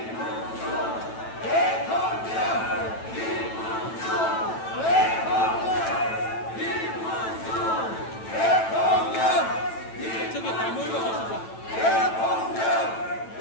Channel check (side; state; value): right; late; 9.1 ms